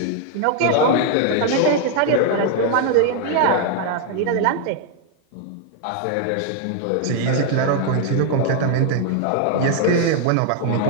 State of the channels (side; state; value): both; different; correlation 0.00